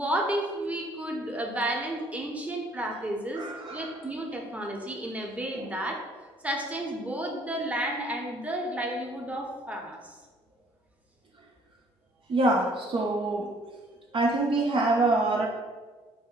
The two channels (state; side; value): normal; both; correlation 0.60